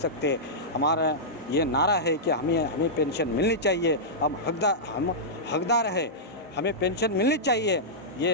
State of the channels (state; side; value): normal; both; correlation -0.12